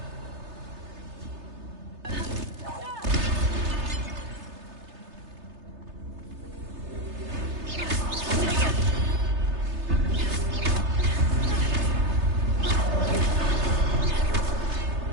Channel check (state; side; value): late; left; 3.3 ms